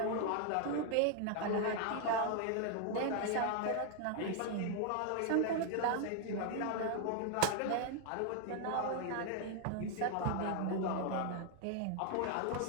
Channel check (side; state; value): both; different; correlation 0.00